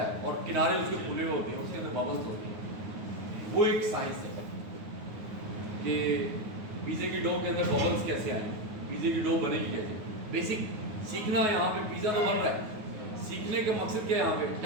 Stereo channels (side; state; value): left; late; 9.6 ms